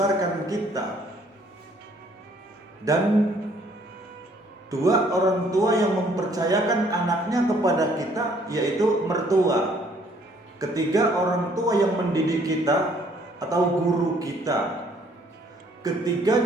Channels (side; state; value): both; normal; correlation 0.62